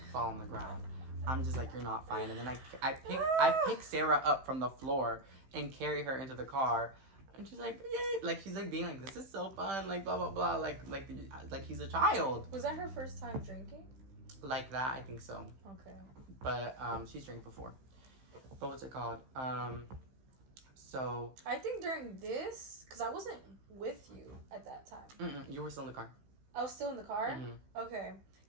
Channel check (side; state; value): left; late; 15 ms